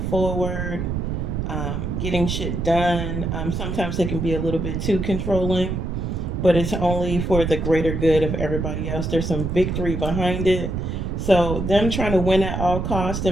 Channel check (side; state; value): right; noise; rumble, 2 dB below the sound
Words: forward, getting shit done. Sometimes they can be a little bit too controlling, but it's only for the greater good of everybody else. There's some victory behind it. So them trying to win at all costs,